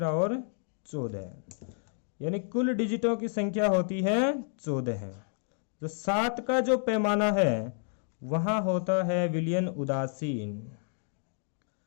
और 14। यानी कुल डिजिटों की संख्या होती है 14। जो 7 का जो पैमाना है वहाँ होता है विलयन उदासीन।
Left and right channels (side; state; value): right; silent; 58 dB below the other